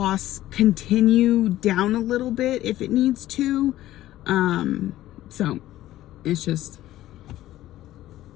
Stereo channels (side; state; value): right; quieter; 14.6 dB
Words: continue down a little bit if it needs to. So it's just,